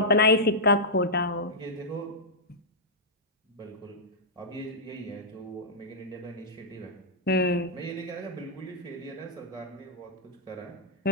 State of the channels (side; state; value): both; normal; correlation -0.09